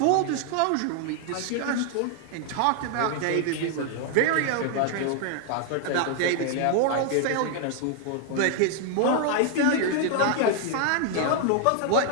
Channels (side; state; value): both; different; correlation 0.00